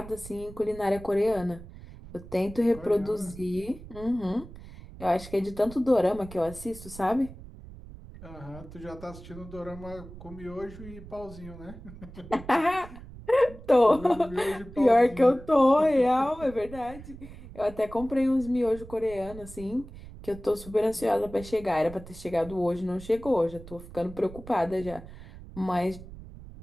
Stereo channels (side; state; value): right; noise; rumble, 16 dB below the sound